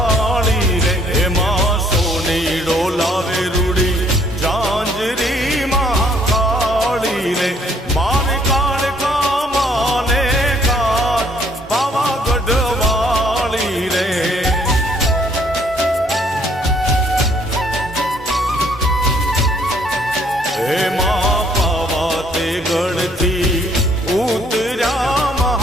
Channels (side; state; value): both; normal; correlation 0.65